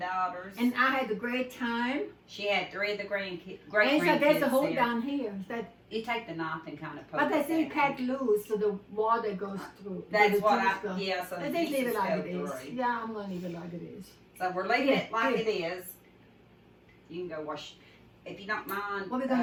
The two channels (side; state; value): both; identical; correlation 1.00